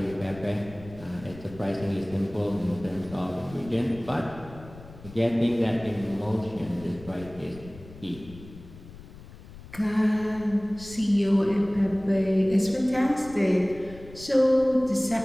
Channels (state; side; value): noise; left; rumble, 18 dB below the sound